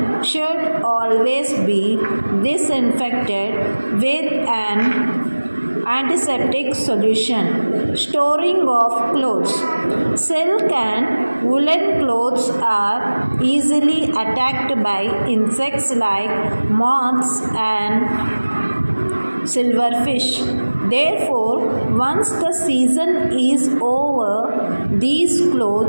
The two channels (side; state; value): both; inverted; correlation -1.00